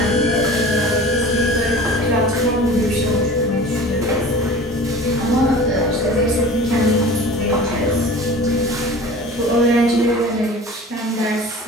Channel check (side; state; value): both; normal; correlation 0.40